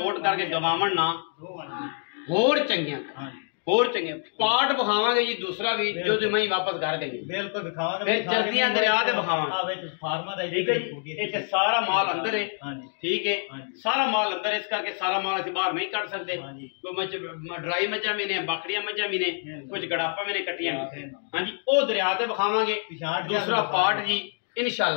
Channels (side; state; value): right; silent; 58 dB below the other